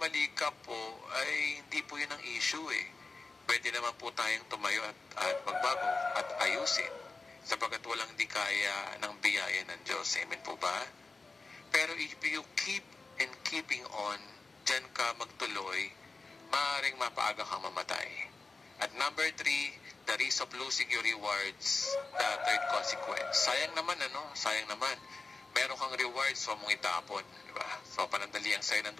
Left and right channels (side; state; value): right; quieter; 3.8 dB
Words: ka po, ay hindi po yun ang issue Pwede naman po tayong tumayo at magbago at ayusin sapagkat walang di kaya ng biyaya ng Diyos. Amen po ba? Pero if you keep and keeping on, dyan ka magtuloy, maaaring mapaaga kang mamatay. At number 3, the risk of losing your rewards, the third consequence. Sayang naman, Sayang naman. Meron kang rewards, so mong itapon. Diba? So, panandali ang sa'yo ng